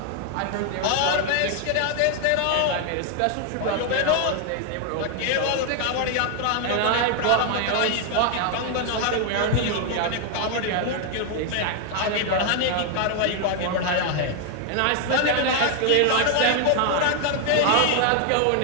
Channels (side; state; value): both; different; correlation 0.00